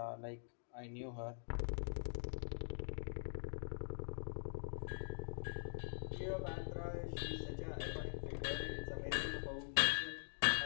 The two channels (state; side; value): silent; right; digital silence